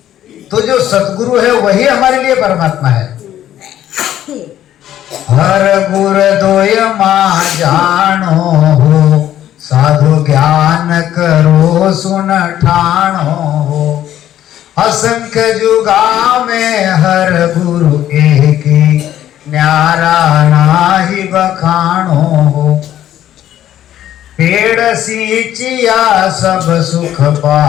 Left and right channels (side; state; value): right; quieter; 11.8 dB